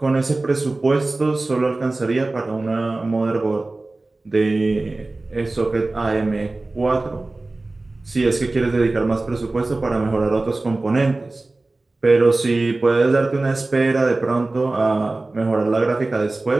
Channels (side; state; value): left; quieter; 3.1 dB